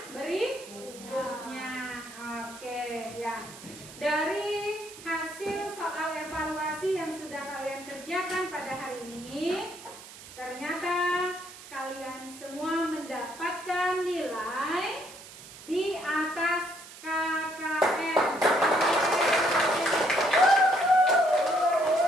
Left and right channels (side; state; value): right; noise; hiss, 17 dB below the sound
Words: berikutnya. Oke, ya. Dari hasil soal evaluasi yang sudah kalian kerjakan pada hari ini, ternyata kalian semua mendapatkan nilai di atas KKM.